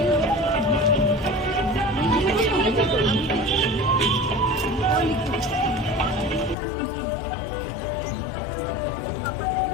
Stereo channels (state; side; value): drops out; right; at 6.6 s